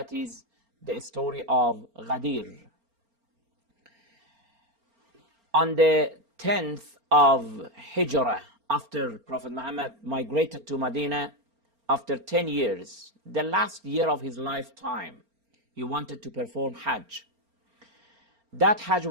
is the story of Ghadir. On the 10th of Hijrah, after Prophet Muhammad migrated to Medina, after 10 years, the last year of his lifetime, he wanted to perform Hajj. That Hajj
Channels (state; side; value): late; left; 4.4 ms